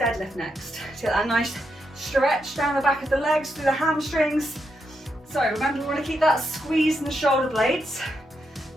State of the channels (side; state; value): both; normal; correlation 0.82